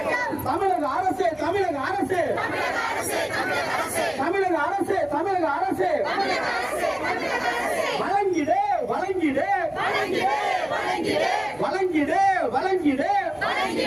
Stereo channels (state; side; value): noise; left; hum, 29 dB below the sound